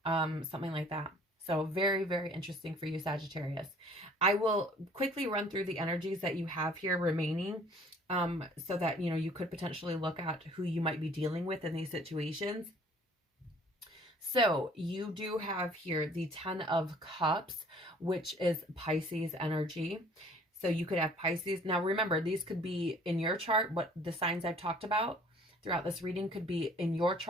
something like that. So very, very interesting for you, Sagittarius. I will quickly run through the energies that you have here remaining, so that, you know, you could potentially look at who you might be dealing with in these situations. So you do have here the 10 of Cups, which is Pisces energy. So you could have Pisces. Now remember, these could be in your chart. What the signs I've talked about throughout this reading could be in your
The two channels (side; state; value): both; normal; correlation 0.55